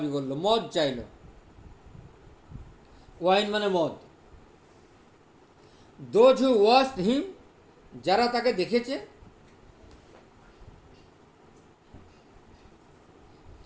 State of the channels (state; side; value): identical; both; correlation 1.00